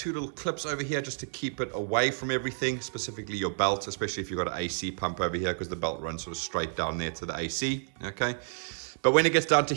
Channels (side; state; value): left; silent; 58 dB below the other